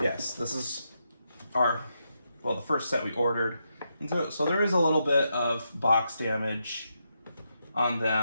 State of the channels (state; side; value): inverted; both; correlation -0.83